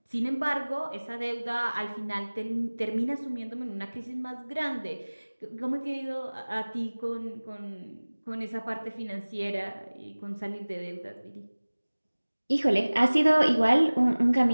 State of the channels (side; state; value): both; inverted; correlation -1.00